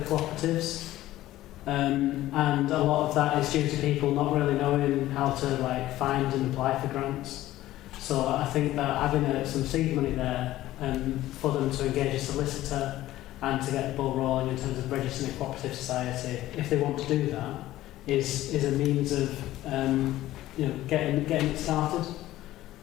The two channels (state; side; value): quieter; right; 15.2 dB